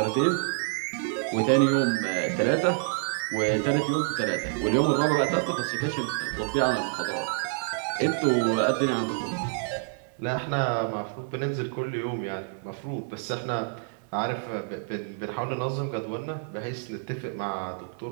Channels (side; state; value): left; silent; 59 dB below the other